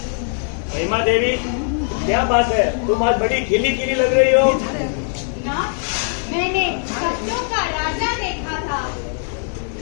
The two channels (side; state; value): right; silent; 58 dB below the other